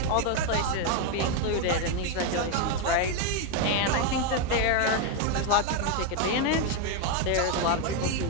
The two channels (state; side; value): different; both; correlation 0.01